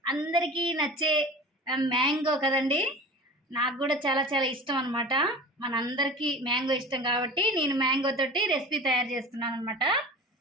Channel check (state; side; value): normal; both; correlation 0.37